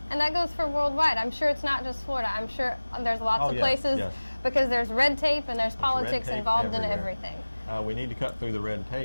And that goes for worldwide. I'm sure it's not just Florida. I'm sure there's lots of places because there's red tape and there's politics involved in everything. We need to cut through the red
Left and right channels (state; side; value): inverted; both; correlation -1.00